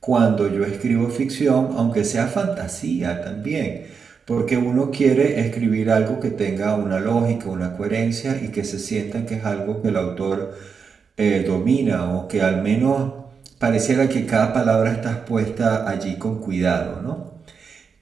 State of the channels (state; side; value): quieter; left; 5.8 dB